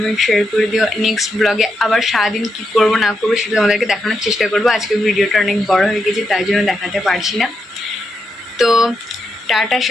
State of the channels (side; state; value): both; normal; correlation 0.84